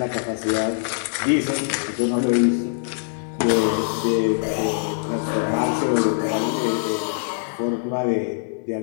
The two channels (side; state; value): right; silent; digital silence